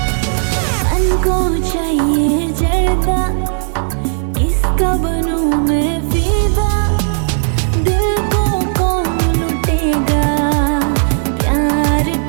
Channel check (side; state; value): left; silent; digital silence